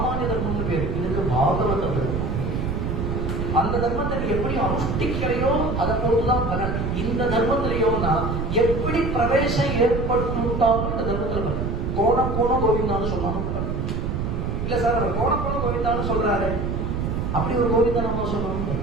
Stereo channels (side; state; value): right; noise; rumble, 1 dB below the sound